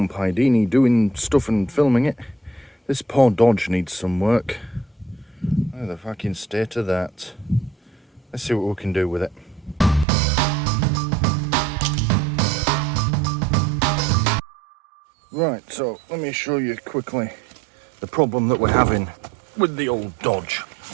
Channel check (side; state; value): left; drops out; at 10.1 s